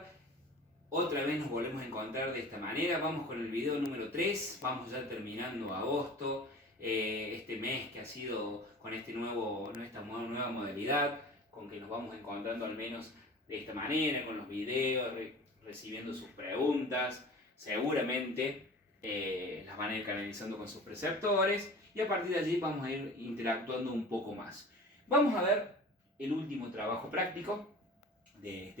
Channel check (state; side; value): normal; both; correlation 0.39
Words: Otra vez nos volvemos a encontrar de esta manera. Vamos con el video número 3. Vamos ya terminando agosto. Este mes que ha sido con esta nueva modalidad, con que nos vamos encontrando al menos de esta manera, con los videos, recibiendo sus preguntas. Seguramente las van a ir canalizando con sus preceptores y a partir de allí vamos a ir interactuando un poco más. Vamos a ver el último trabajo práctico de